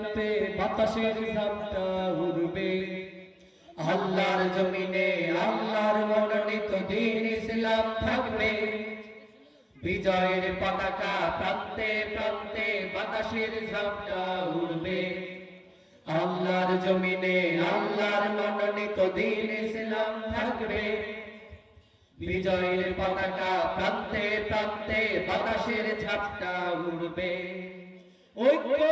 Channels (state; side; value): identical; both; correlation 1.00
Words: বাতাসের ঝাপটা উড়বে। আল্লাহর জমিনে আল্লাহর মনোনীত দ্বীন ইসলাম থাকবে। বিজয়ের পতাকা প্রান্তে প্রান্তে বাতাসের ঝাপটা উড়বে। আল্লাহর জমিনে আল্লাহর মনোনীত দ্বীন ইসলাম থাকবে। বিজয়ের পতাকা প্রান্তে প্রান্তে বাতাসের ঝাপটা উড়বে। ঐক্য